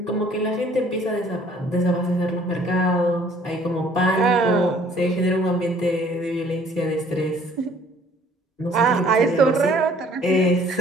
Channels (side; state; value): both; normal; correlation 0.57